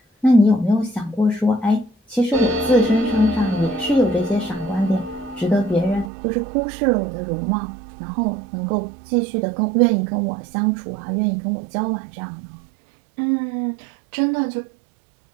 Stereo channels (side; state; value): left; drops out; at 6.1 s